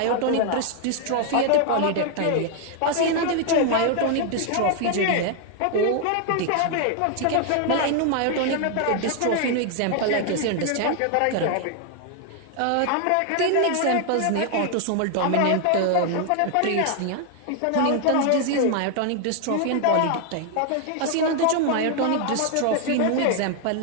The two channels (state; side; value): different; both; correlation 0.00